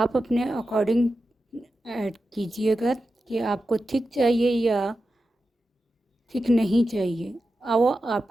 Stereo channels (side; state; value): both; normal; correlation 0.91